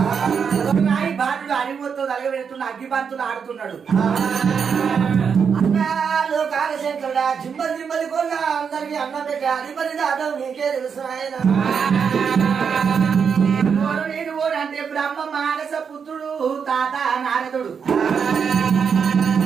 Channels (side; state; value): left; quieter; 6.5 dB